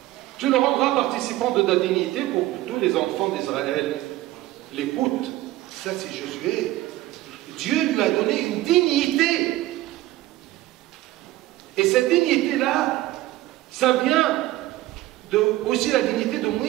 Tu le rendras participant de ta dignité pour que tous les enfants d'Israël l'écoutent. Ça, c'est Josué. Dieu lui a donné une dignité. Et cette dignité-là, ça vient aussi la dignité de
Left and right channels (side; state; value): left; quieter; 16.5 dB